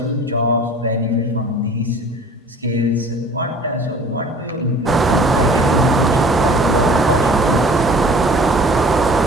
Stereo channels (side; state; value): both; normal; correlation 0.48